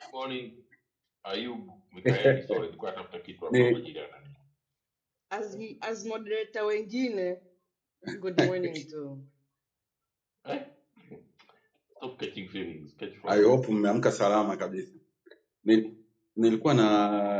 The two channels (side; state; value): both; identical; correlation 1.00